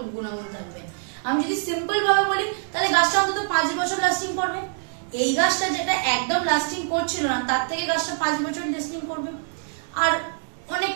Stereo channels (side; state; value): left; silent; 62 dB below the other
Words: গুণাগুণ থাকবে। আমি যদি সিম্পল ভাবে বলি, তাহলে গাছটা অন্তত 5 বছর লাস্টিং করবে, এই গাছটা যেটা একদম লাস্টিং করছিল না, তার থেকে গাছটা 5 বছর লাস্টিং করবে। আর অনেক